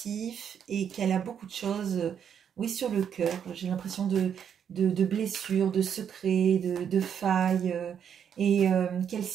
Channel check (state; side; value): quieter; left; 8.2 dB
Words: et qu'elle a beaucoup de choses, oui, sur le cœur. J'ai l'impression de blessures, de secrets, de failles, et qu'elle